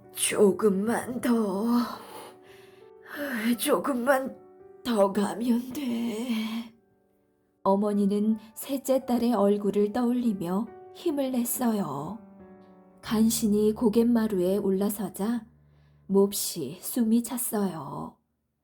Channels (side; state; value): both; identical; correlation 1.00